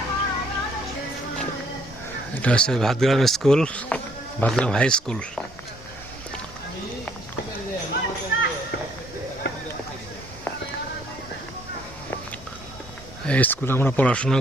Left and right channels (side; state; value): both; normal; correlation 0.66